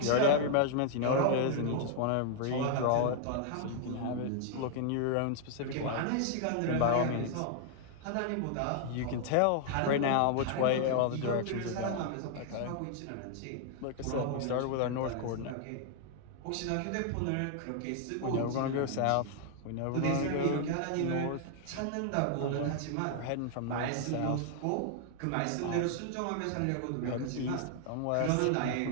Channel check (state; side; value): different; both; correlation 0.00